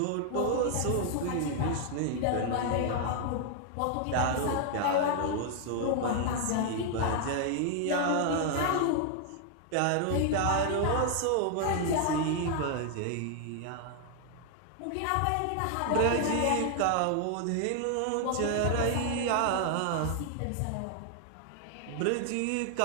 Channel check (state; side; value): different; both; correlation 0.00